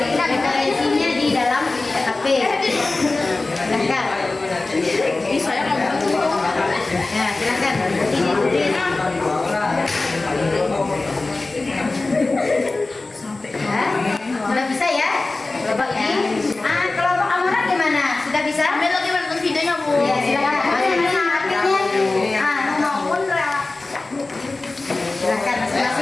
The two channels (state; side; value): quieter; right; 3.3 dB